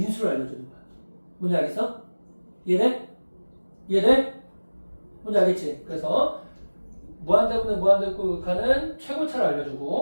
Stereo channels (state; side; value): inverted; both; correlation -1.00